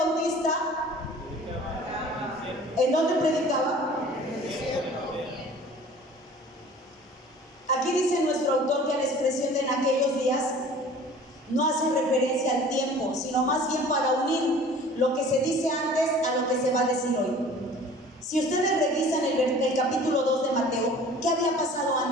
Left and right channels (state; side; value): normal; both; correlation 0.46